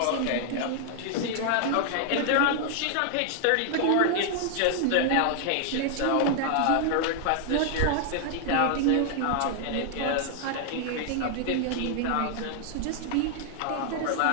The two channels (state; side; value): different; both; correlation 0.00